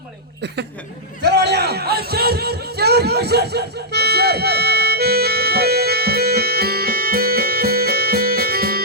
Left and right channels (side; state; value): both; normal; correlation -0.10